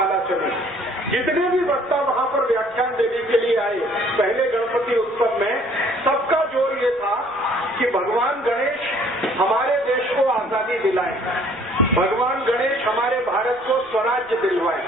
चली। जितने भी वक्ता वहाँ पर व्याख्यान देने के लिए आए पहले गणपति उत्सव में, सबका जोर ये था कि भगवान गणेश हमारे देश को आजादी दिलाए, भगवान गणेश हमारे भारत को स्वराज्य दिलवाए,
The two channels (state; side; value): noise; right; rumble, 29 dB below the sound